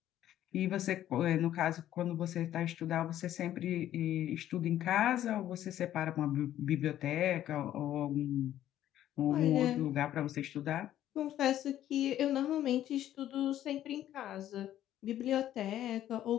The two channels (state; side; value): quieter; right; 12.2 dB